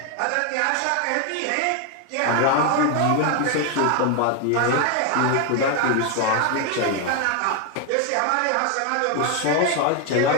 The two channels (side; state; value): both; different; correlation 0.01